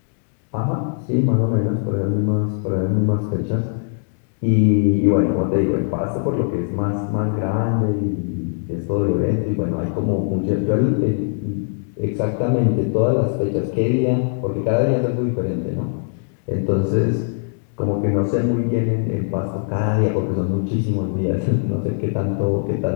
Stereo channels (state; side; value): silent; right; 65 dB below the other